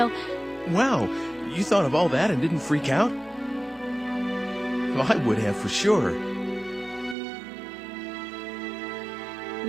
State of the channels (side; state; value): left; drops out; at 7.2 s